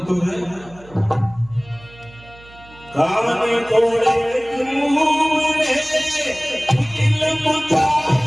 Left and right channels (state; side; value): noise; right; hum, 22 dB below the sound